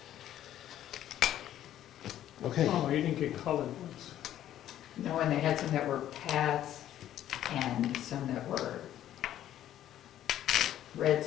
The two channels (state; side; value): quieter; right; 11.9 dB